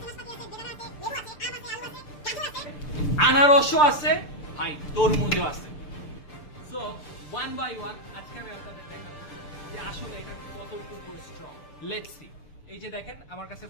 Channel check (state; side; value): late; right; 6.8 ms